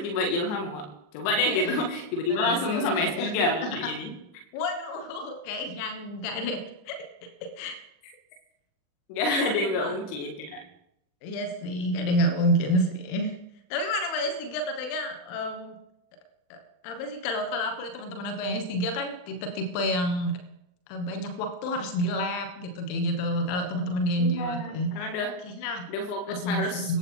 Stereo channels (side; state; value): right; late; 39 ms